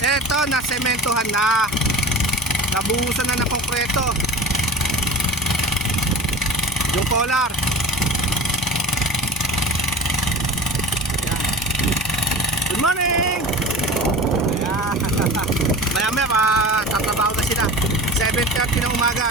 na sementohan na. Nabuhusan na ng konkreto. Yung collar. Ayan. Good morning. Ayan. Maya tatrabaho na sila. 7:30 ng umaga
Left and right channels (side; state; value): both; normal; correlation 0.35